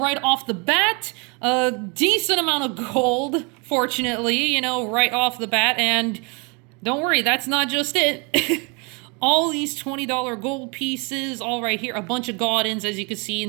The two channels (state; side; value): quieter; left; 31.7 dB